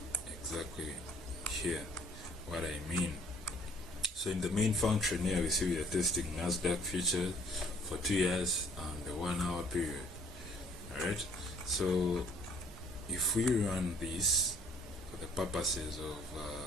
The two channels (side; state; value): both; normal; correlation 0.58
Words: exactly here what I mean. So in the main function here, we see we are testing Nasdaq Futures for 2 years and the 1 hour period. Alright, so if we run this for the purposes of